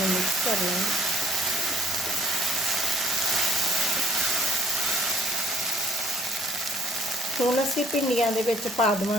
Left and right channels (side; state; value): both; normal; correlation 0.59